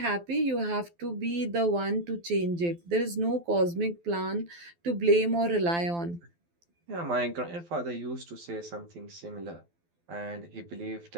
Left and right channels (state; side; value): late; left; 12 ms